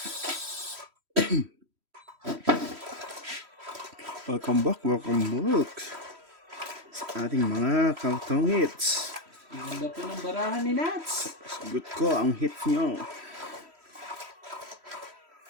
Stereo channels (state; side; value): late; left; 3.1 ms